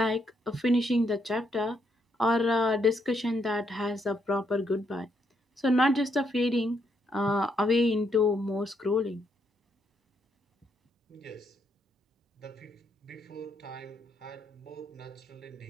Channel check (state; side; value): normal; both; correlation 0.76